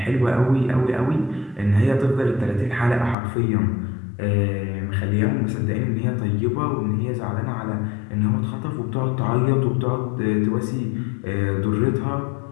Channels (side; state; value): right; drops out; at 3.2 s